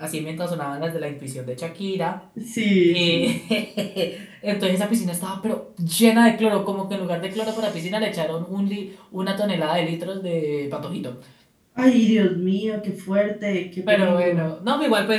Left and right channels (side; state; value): both; identical; correlation 1.00